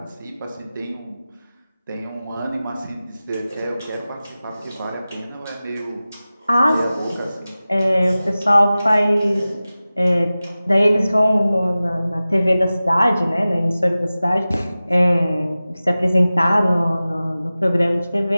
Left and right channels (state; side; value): inverted; both; correlation -0.96